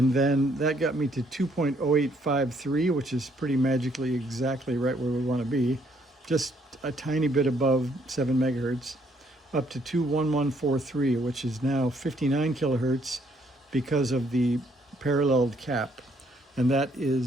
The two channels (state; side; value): normal; both; correlation 0.68